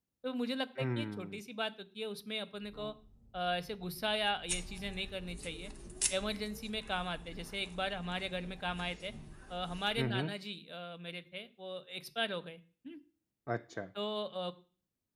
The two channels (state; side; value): identical; both; correlation 1.00